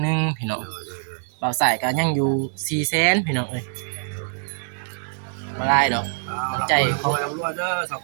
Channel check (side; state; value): left; silent; 63 dB below the other